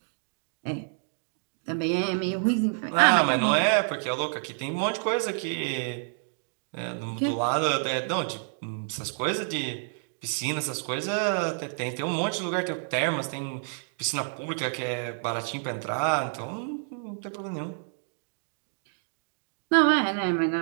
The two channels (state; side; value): silent; left; digital silence